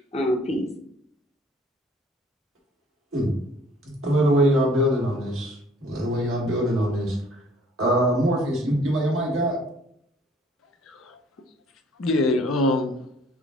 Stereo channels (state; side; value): normal; both; correlation 0.56